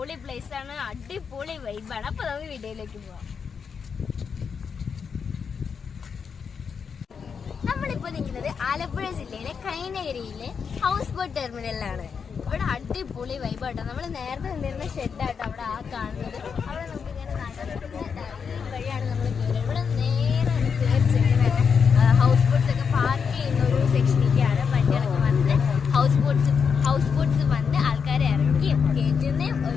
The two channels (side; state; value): right; quieter; 6.2 dB